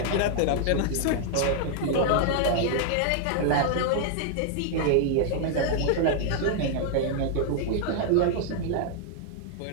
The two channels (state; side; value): different; both; correlation 0.00